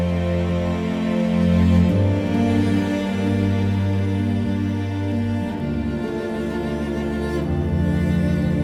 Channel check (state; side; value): identical; both; correlation 1.00